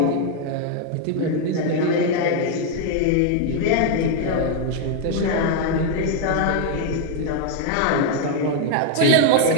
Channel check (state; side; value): different; both; correlation 0.00